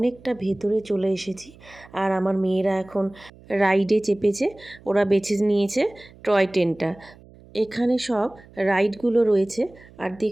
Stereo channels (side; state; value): right; noise; hum, 24 dB below the sound